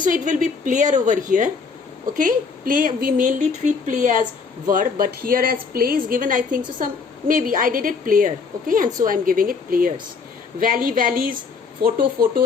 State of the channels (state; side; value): quieter; right; 5.1 dB